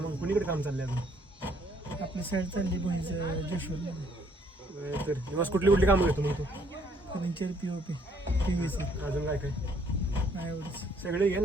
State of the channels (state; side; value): normal; both; correlation 0.65